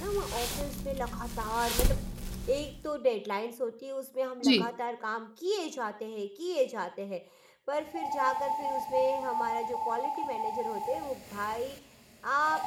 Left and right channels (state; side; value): identical; both; correlation 1.00